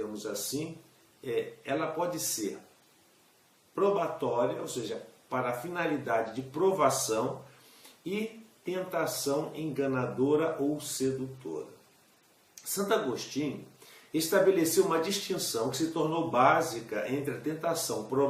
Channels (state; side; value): identical; both; correlation 1.00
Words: assim, ela pode ser probatória, ou seja, para a finalidade de provação, e tentação enganadora ou sedutora. Santo Agostinho estabeleceu uma distinção que se tornou básica entre a tentação